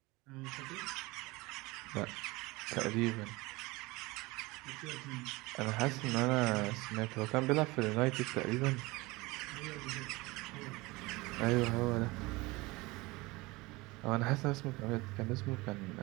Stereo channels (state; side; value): quieter; left; 22.7 dB